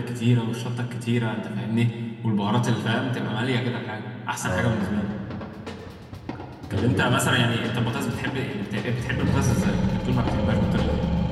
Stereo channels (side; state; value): both; identical; correlation 1.00